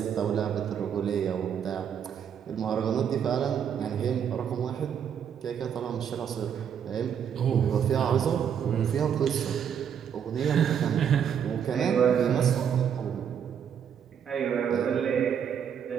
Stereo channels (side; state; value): left; quieter; 8.2 dB